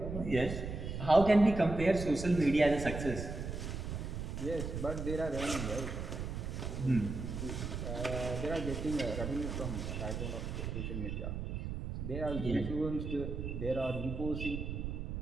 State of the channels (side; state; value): right; noise; rumble, 5 dB below the sound